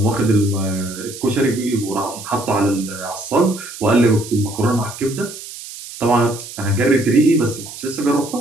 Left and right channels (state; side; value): noise; right; hiss, 13 dB below the sound